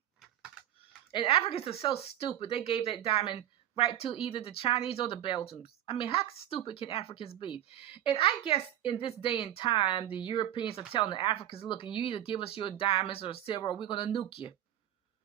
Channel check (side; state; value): left; quieter; 12.2 dB